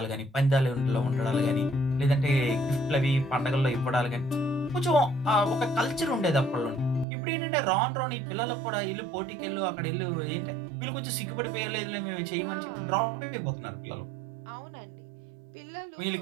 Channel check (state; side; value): drops out; left; at 7.1 s